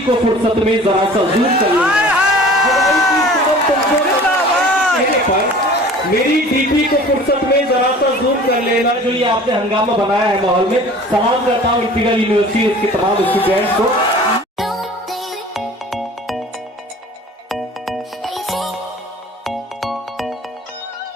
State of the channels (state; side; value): normal; both; correlation 0.45